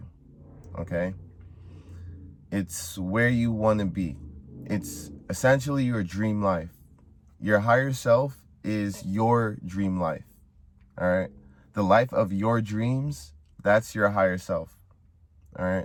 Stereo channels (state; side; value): identical; both; correlation 1.00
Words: okay? It's where you want to be. It's essentially your dream life. Your higher self is your dream life, all right? The life of your dreams, that's your higher self, all